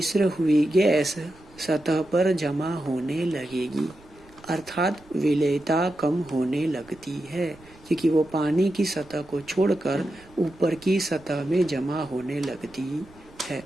हुई गैस सतह पर जमा होने लगेगी, अर्थात विलेयता कम होने लगती है, क्योंकि वो पानी की सतह को छोड़कर ऊपर की सतह में जमा होने लगती है।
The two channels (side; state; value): right; noise; rumble, 25 dB below the sound